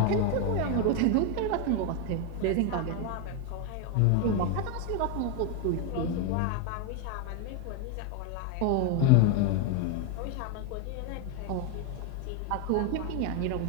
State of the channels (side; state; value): both; different; correlation 0.01